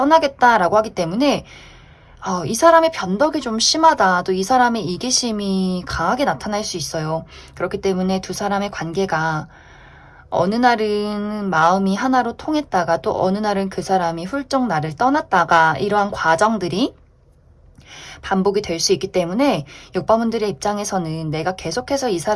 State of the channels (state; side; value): identical; both; correlation 1.00